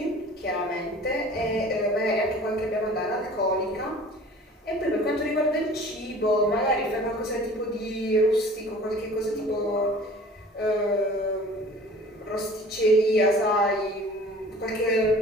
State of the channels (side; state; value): both; normal; correlation 0.46